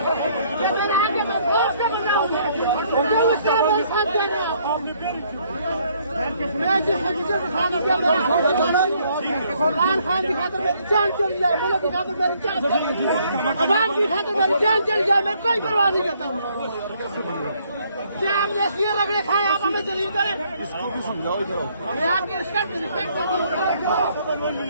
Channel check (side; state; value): both; inverted; correlation -0.66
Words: खान की खातर मेरी जान चली जाए, मुल्क की खातर मेरी जान चली जाए, अवाम की खातर मेरी जान चली जाए, मैं कोई परवाह नहीं करता हूँ। क्या हमने इसलिए रगड़े खाए, आप हमें दलील करें? मैं आपकी रिस्पेक्ट करता हूँ।